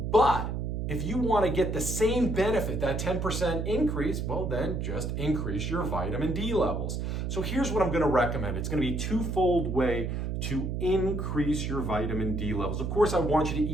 But if you want to get the same benefit, that 10% increase, well, then just increase your vitamin D levels. So here's what I'm going to recommend. It's going to be a twofold way to increase your vitamin D levels. Of course, I want you to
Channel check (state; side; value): noise; right; hum, 2 dB below the sound